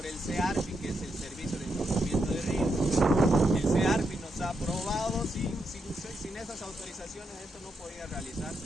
el CEARPI, que es el Servicio de Encauzamiento de Ríos. El CEARPI nos ha aprobado, sin esas autorizaciones esto no podía realizarse.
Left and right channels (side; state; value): both; normal; correlation 0.82